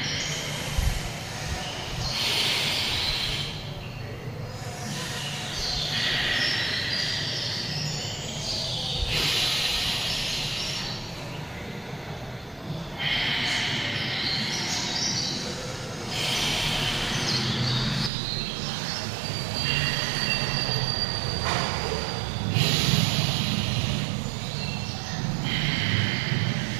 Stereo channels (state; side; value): drops out; left; at 18.1 s